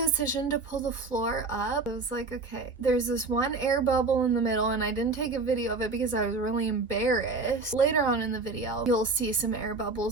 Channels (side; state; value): left; quieter; 3.8 dB